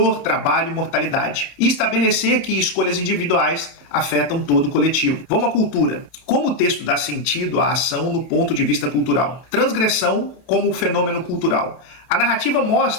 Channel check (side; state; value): right; late; 31 ms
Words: trabalho e mortalidade. E estabelecer que escolhas individuais afetam todo o coletivo. Vamos à cultura. Como o texto dá sentido à ação no ponto de vista cultural? Transgressão como fenômeno cultural. A narrativa